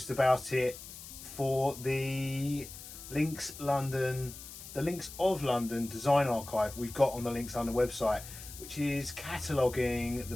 about it for the Links of London design archive we've got on the Links London website, which is cataloguing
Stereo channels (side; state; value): left; noise; hiss, 13 dB below the sound